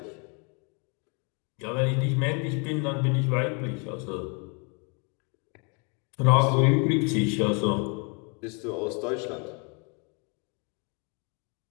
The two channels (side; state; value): right; quieter; 34.3 dB